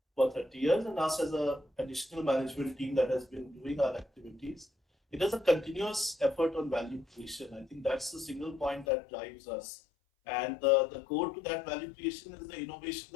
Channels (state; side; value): drops out; right; at 8.8 s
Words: for 30 years, and us as a additional management team that has been doing our activities. It is a continuous effort on value creation. I think that's the single point that drives us. And the core to that value creation is the innovation